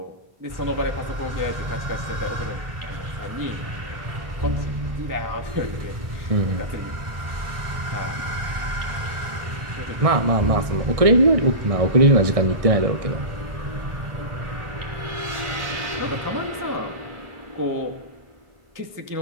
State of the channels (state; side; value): late; left; 1.6 ms